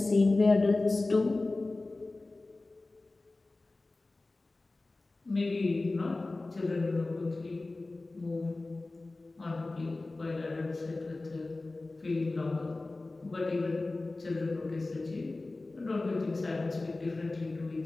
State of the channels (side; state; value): right; quieter; 3.2 dB